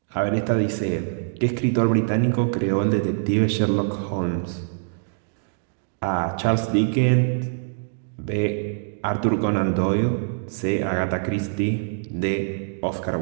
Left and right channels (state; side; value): silent; left; digital silence